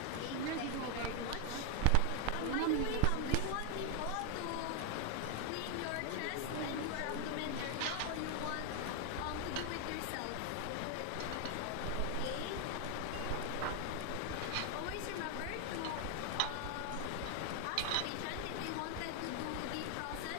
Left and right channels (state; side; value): different; both; correlation 0.00